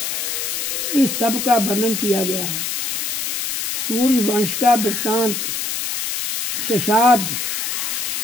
इस सब का वर्णन किया गया है। सूर्य वंश का वृत्तांत, शशाद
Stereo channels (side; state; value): left; noise; hiss, 1 dB below the sound